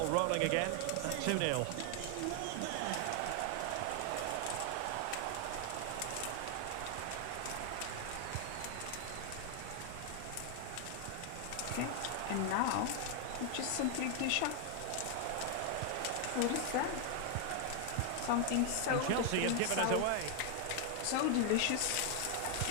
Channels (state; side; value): different; both; correlation 0.00